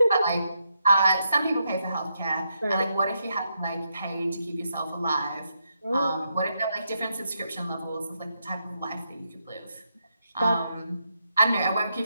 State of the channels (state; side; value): inverted; both; correlation -0.81